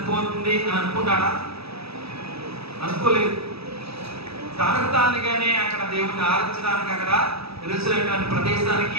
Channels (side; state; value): left; late; 0.77 ms